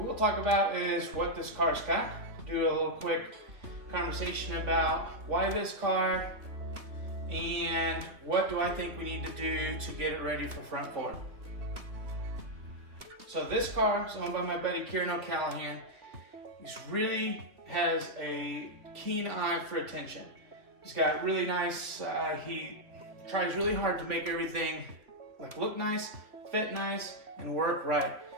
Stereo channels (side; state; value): left; late; 3.0 ms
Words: talk about is what this car's got. Do a little quick conversation about why this car and what do I think we need to do to get it ready for front forward. So this car is owned by my buddy Kieran O'Callahan. He really has a keen eye for attention. He's got really nice, he tries really hard to make everything look nice, fit nice, and work right.